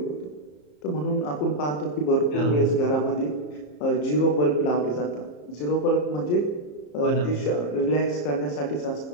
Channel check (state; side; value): late; right; 34 ms